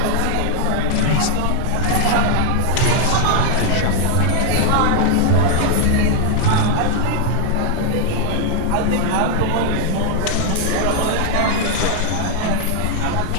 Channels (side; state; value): both; different; correlation 0.00